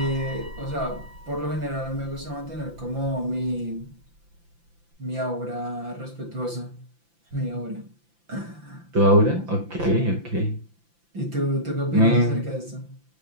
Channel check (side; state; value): left; late; 5.9 ms